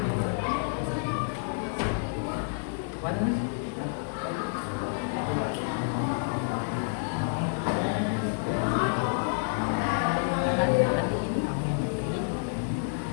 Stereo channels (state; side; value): silent; right; 59 dB below the other